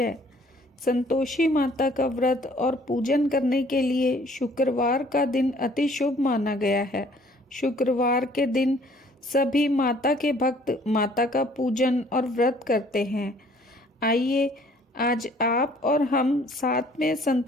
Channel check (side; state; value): both; normal; correlation 0.58